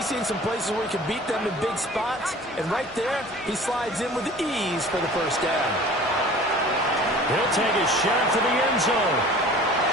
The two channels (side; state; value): both; normal; correlation 0.45